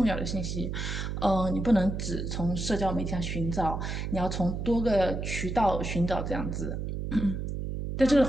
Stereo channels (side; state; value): right; noise; hum, 4 dB below the sound